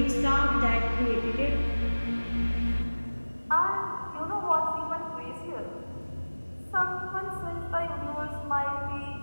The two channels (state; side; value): inverted; both; correlation -1.00